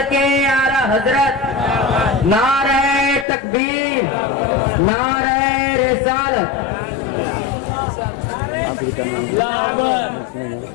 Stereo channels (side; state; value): right; drops out; at 3.2 s